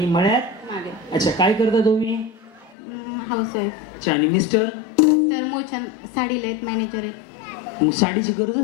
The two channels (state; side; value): drops out; right; at 2.8 s